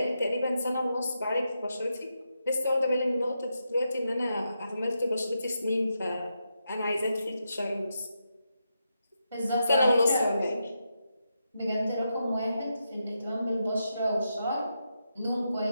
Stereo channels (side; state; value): both; inverted; correlation -0.85